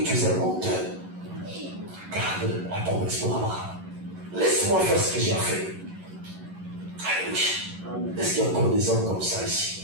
tu es un menteur. Garde la promesse pour Abraham. Laisse-moi faire ce que j'ai à faire. Alléluia. Est-ce qu'il y a encore des hommes comme ça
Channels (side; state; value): left; late; 11 ms